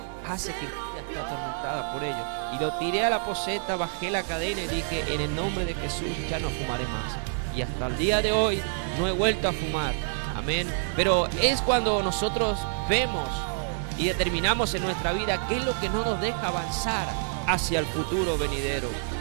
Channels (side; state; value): left; silent; digital silence